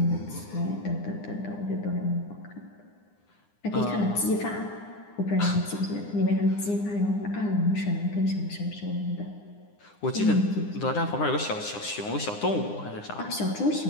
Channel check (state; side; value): late; right; 9.8 ms